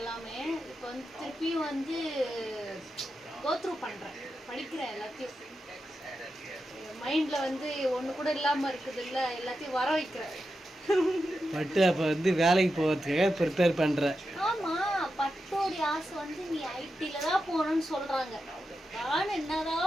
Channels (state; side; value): normal; both; correlation 0.89